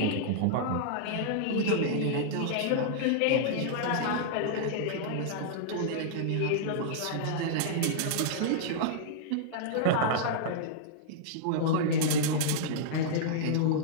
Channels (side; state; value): both; different; correlation -0.02